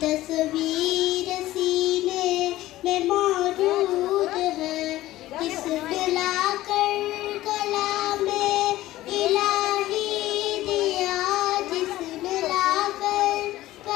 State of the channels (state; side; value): quieter; right; 15.9 dB